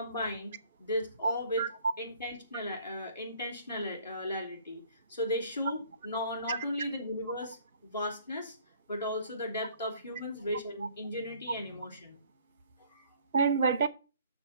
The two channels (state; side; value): inverted; both; correlation -0.57